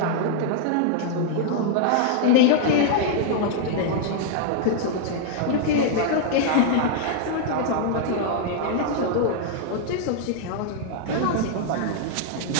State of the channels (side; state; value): both; different; correlation -0.01